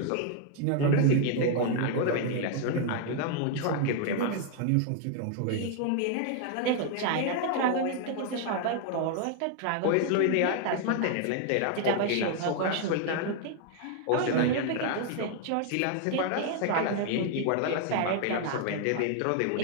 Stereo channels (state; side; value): different; both; correlation 0.00